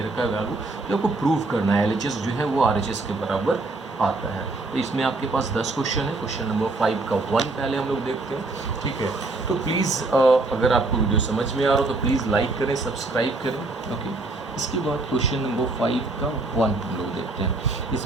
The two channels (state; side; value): quieter; left; 3.2 dB